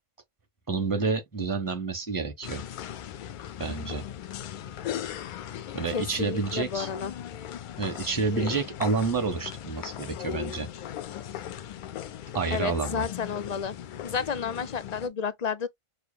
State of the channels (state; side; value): late; right; 1.9 ms